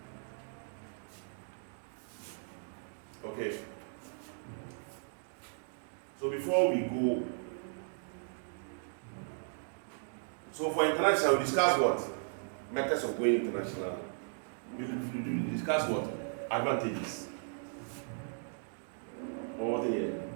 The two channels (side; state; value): left; silent; digital silence